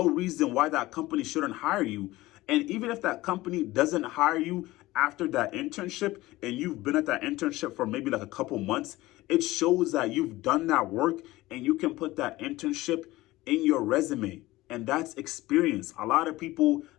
reason why that company shouldn't hire you. And even if that company doesn't hire you after that internship and you've been at that internship for maybe like a couple months, it shows that you've done that work and you can put that internship in your resume. And that's experience. A lot of people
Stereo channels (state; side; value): quieter; right; 18.4 dB